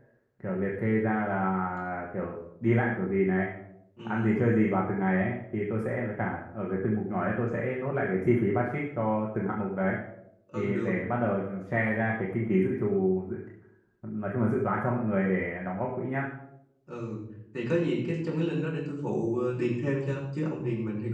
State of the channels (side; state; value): both; identical; correlation 1.00